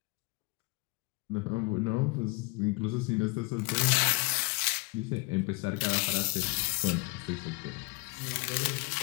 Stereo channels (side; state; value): right; quieter; 27.3 dB